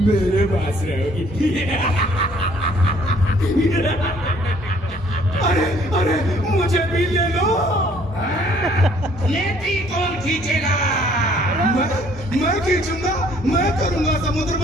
मेरे पास रहोगी। अरे अरे, मुझे भी ले लो। नेति कौन खींचेगा? मैं खींचूंगा, मैं करूंगा समुद्र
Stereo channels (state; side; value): normal; both; correlation 0.60